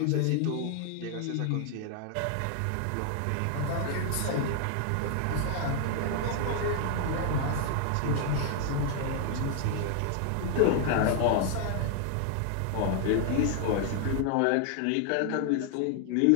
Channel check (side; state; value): both; different; correlation 0.00